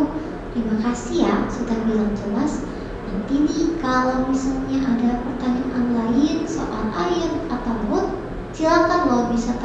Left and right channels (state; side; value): identical; both; correlation 1.00